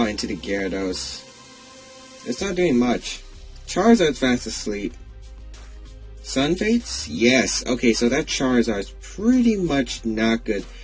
into the Gyarados. It's not doing much. Charizard's fast asleep. Sun Fates? Yes. Okay, so that Charizard's pretty much not good.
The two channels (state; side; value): identical; both; correlation 1.00